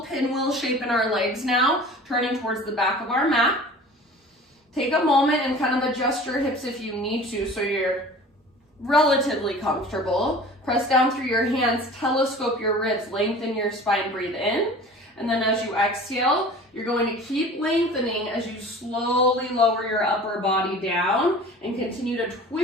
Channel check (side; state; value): both; normal; correlation 0.42